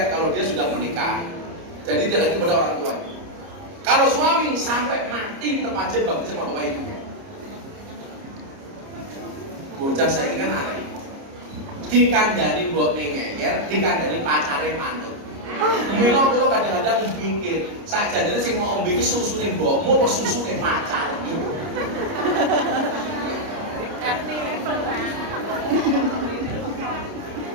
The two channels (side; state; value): left; late; 30 ms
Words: dia sudah menikah. Jadi dia lagi kepada orang tuanya. Kalau suami sampai mati tetap aja bakti sama bapak ibunya. Bocah saya ini kan aneh. Dikandani mbok ngeyer, dikandani pacare manut. Mila kula kadang-kadang mikir, sakjane sing mau ombe iki susune mbokmu apa susune pacarmu? RT level, Pak.